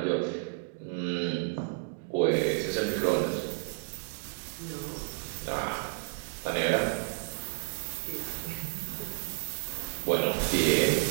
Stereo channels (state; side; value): silent; left; digital silence